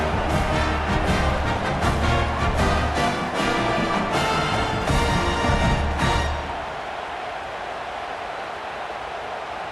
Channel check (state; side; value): identical; both; correlation 1.00